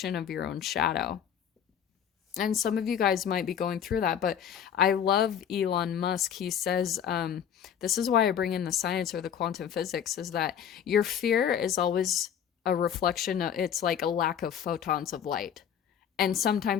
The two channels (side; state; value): right; quieter; 8.7 dB